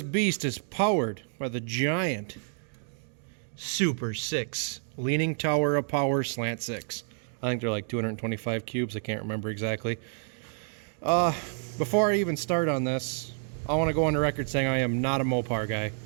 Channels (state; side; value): silent; left; 58 dB below the other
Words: beast is powered by the giant Super 6 Leaning Tower of Power Slant 6. I think they're like 225 cubes. I can't remember exactly. Before I even start on this, I want to go on the record saying I am not a Mopar guy.